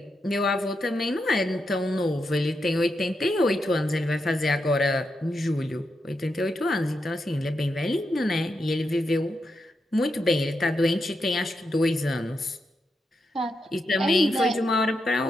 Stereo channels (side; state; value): both; normal; correlation 0.85